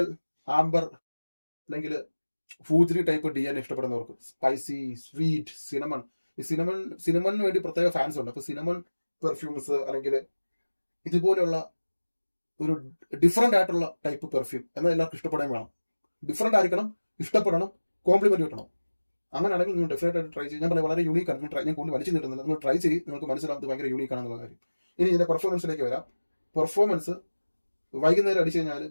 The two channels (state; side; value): inverted; both; correlation -1.00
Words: ആംബർ അല്ലെങ്കിൽ ഫൂജറി ടൈപ്പ് DNA ഇഷ്ടപ്പെടുന്നവർക്ക്, സ്പൈസി, സ്വീറ്റ്, സിനമൺ. ഈ സിനമണിന് വേണ്ടി പ്രത്യേക ഫാൻസ് ഉണ്ട്. അപ്പൊ സിനമൺ പെർഫ്യൂംസ് അല്ലെങ്കിൽ ഇതുപോലെയുള്ള ഒരു ഡിഫറെന്റ് ആയിട്ടുള്ള ടൈപ്പ് പെർഫ്യൂം എന്നാൽ എല്ലാവർക്കും ഇഷ്ടപ്പെടാൻ വേണം. ഡിഫറെന്റ് ആയിരിക്കണം, ഇഷ്ടപ്പെടണം, കോംപ്ലിമെന്റ് കിട്ടണം. അങ്ങനെയാണെങ്കിൽ നിങ്ങൾ ഡെഫിനറ്റ് ആയിട്ട് ട്രൈ ചെയ്യും. ഞാൻ പറയാം വളരെ യൂണീക്ക് ആണ്. ഞാൻ കൂടുതൽ വലിച്ചു നീട്ടുന്നില്ല. നിങ്ങൾ ട്രൈ ചെയ്ത് നിങ്ങൾക്ക് മനസ്സിലാകുന്നത് ഭയങ്കര യൂണീക്ക് ആണെന്നുള്ള കാര്യം. ഇനി ഇതിന്റെ പെർഫോമൻസിലേക്ക് വരാം. പെർഫോമൻസ് വൈകുന്നേരം അടിച്ചു കഴിഞ്ഞാൽ